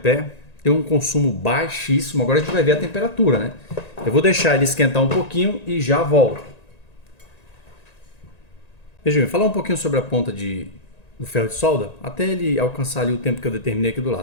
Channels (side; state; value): right; late; 1.9 ms